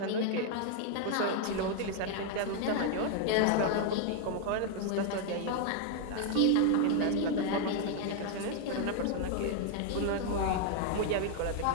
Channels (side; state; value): both; different; correlation 0.00